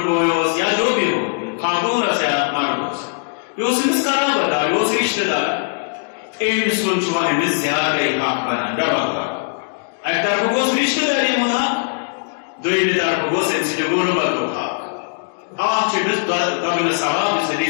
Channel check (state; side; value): silent; right; digital silence